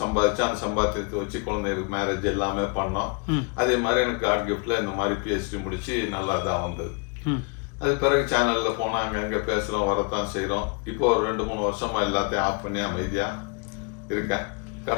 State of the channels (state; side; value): quieter; right; 33.2 dB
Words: சம்பாதிச்சு அந்த சம்பாத்தியத்தை வச்சு குழந்தைகளுக்கு மேரேஜ் எல்லாமே பண்ணோம். அதே மாதிரி எனக்கு காட் கிஃப்ட்ல இந்த மாதிரி பிஹெச்டி முடிச்சு நல்லா தான் வந்தது. அது பிறகு சேனல்ல போனா அங்கங்க பேசுறோம், வரத்தான் செய்யறோம். இப்போ ஒரு 2-3 வருஷமா எல்லாத்தையும் ஆஃப் பண்ணி அமைதியா இருக்கேன்.